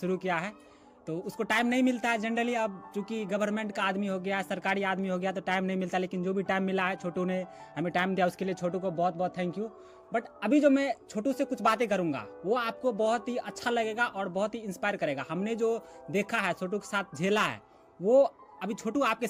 किया है। तो उसको टाइम नहीं मिलता है जनरली, अब चूंकि गवर्नमेंट का आदमी हो गया, सरकारी आदमी हो गया, तो टाइम नहीं मिलता। लेकिन जो भी टाइम मिला है, छोटू ने हमें टाइम दिया, उसके लिए छोटू को बहुत बहुत थैंक यू। बट अभी जो मैं छोटू से कुछ बातें करूंगा वो आपको बहुत ही अच्छा लगेगा और बहुत ही इंस्पायर करेगा। हमने जो देखा है, छोटू के साथ झेला है, वो अभी छोटू आपके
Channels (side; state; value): both; identical; correlation 1.00